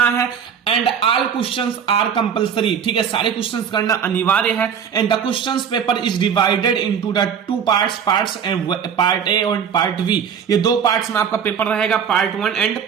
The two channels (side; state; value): left; quieter; 7.6 dB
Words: है and all questions are compulsory. ठीक है, सारे क्वेश्चंस करना अनिवार्य है and the questions paper is divided into the 2 parts and part A और पार्ट बी। ये 2 पार्ट्स में आपका पेपर रहेगा, पार्ट 1 एंड